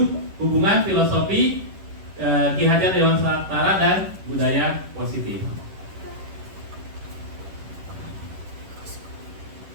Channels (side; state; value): left; late; 11 ms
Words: hubungan filosofi, Ki Hajar Dewantara dan budaya positif.